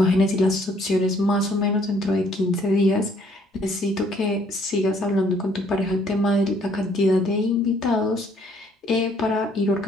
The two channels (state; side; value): normal; both; correlation 0.64